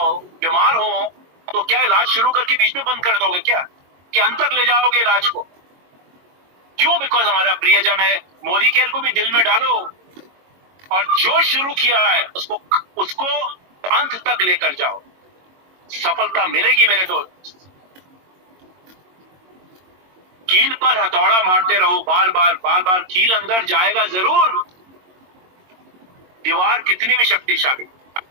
बीमार हो, तो क्या इलाज शुरू करके बीच में बंद कर दोगे क्या? कि अंत तक ले जाओगे इलाज को? क्यों? बिकॉज हमारा प्रियजन है। मोदी केयर को भी दिल में डालो और जो शुरू किया है उसको अंत तक लेकर जाओ। सफलता मिलेगी मेरे दोस्त। कील पर हथौड़ा मारते रहो, बार बार कील अंदर जाएगा जरूर। दीवार कितनी भी शक्तिशाली,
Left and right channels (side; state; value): left; late; 22 ms